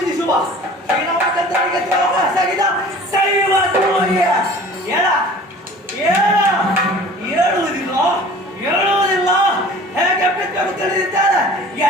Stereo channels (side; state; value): both; normal; correlation 0.45